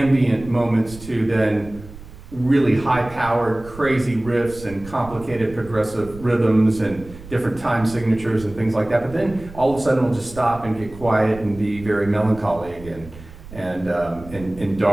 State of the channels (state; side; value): noise; right; rumble, 17 dB below the sound